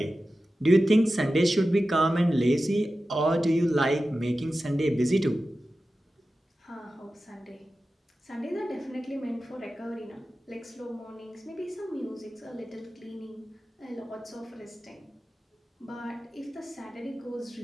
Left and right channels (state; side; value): normal; both; correlation 0.94